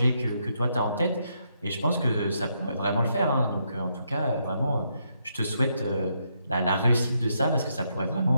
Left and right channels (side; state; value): both; inverted; correlation -0.78